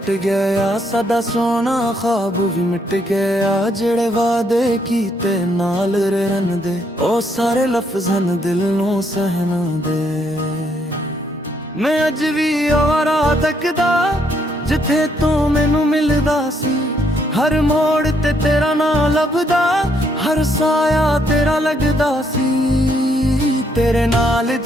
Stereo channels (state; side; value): normal; both; correlation 0.72